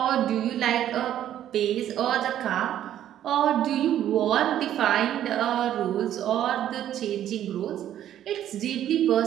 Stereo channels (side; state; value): left; quieter; 11.3 dB